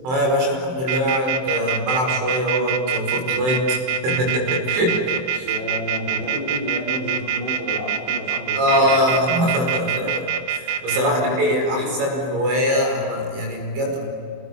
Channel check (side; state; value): left; late; 23 ms